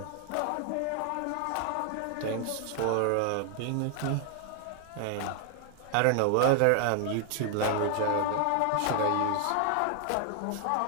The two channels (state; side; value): different; both; correlation 0.00